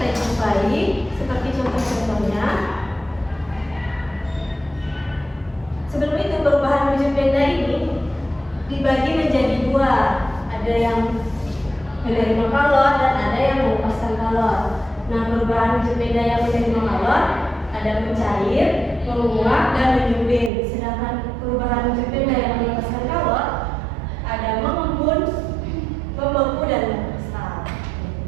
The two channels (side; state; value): left; drops out; at 20.5 s